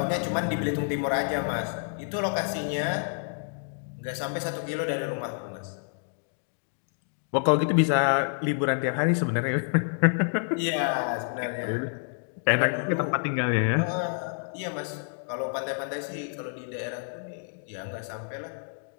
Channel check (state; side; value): silent; right; digital silence